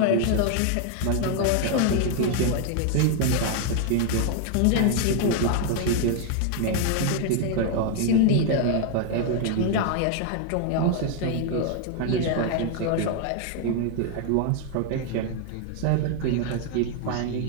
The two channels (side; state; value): both; different; correlation 0.00